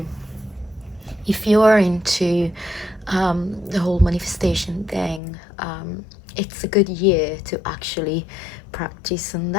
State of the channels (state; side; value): drops out; right; at 5.2 s